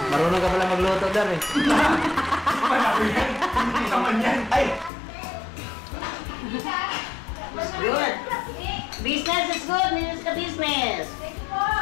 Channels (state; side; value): drops out; right; at 4.9 s